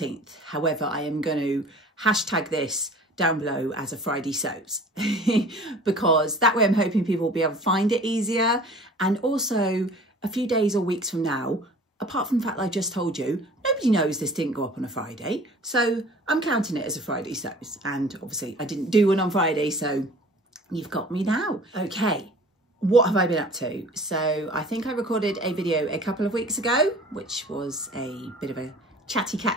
however I am going to hashtag this down below as a Friday Sews because that way I'm hoping people will be able to find it easier, and also a few days or weeks from now, apart from the fact that I just told you, nobody knows this didn't go up on a Friday, so I'm counting it as a Friday Sews, and obviously I didn't do one on Friday, so you've got me now. Okay, what have I been up to? So I think I recorded a video a couple of weeks ago, which was a bit of a chatty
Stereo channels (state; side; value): normal; both; correlation 0.46